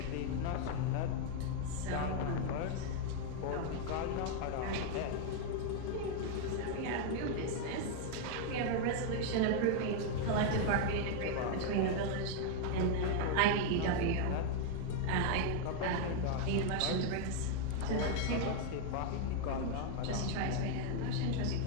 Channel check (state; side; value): different; both; correlation 0.00